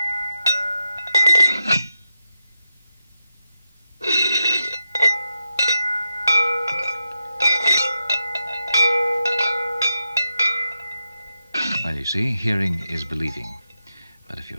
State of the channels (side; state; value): both; inverted; correlation -0.87